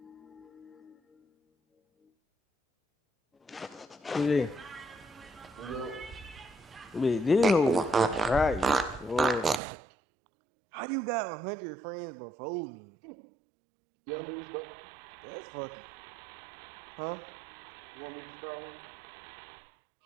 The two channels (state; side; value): drops out; left; at 9.6 s